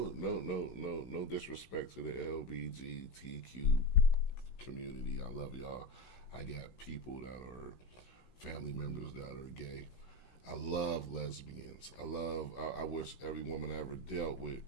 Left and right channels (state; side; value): late; right; 16 ms